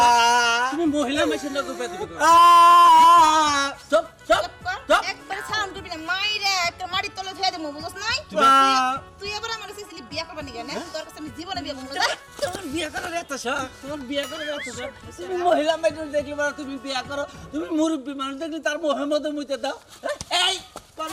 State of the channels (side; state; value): both; identical; correlation 1.00